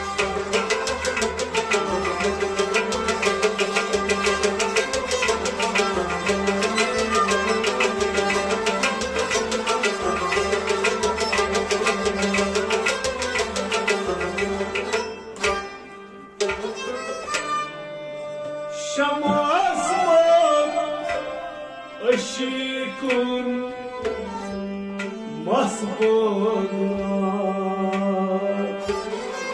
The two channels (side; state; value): both; identical; correlation 1.00